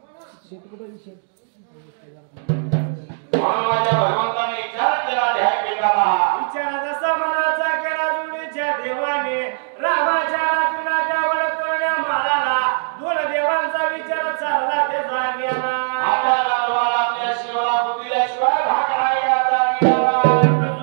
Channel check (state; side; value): silent; left; digital silence